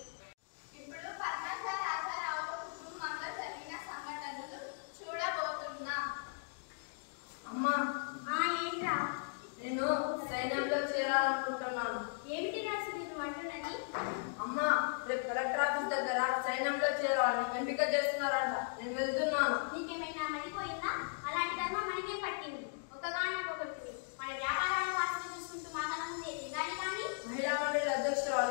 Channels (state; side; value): silent; right; digital silence